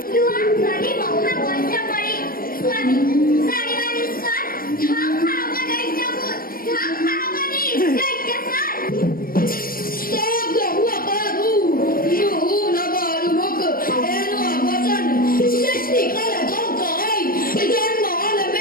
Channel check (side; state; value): right; late; 0.42 ms